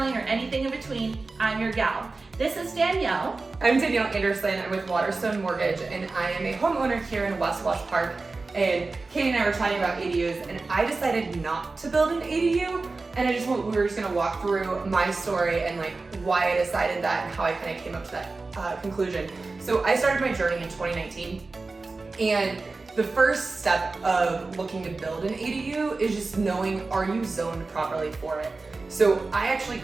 or anything in between, I'm your gal. This is Danielle. I'm Danielle Anderson. I'm with Waterstone Mortgage, and I am a homeowner here in West Wash Park. And Katie and I were chatting about ADUs, and I decided not to build an ADU. And we were just gonna walk through my story and like why I decided that and how I kind of came up to that conclusion. So I started my journey in 2019, and the first step of looking to build an ADU is just knowing, are you zoned properly for it? So I actually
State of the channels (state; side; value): quieter; left; 3.7 dB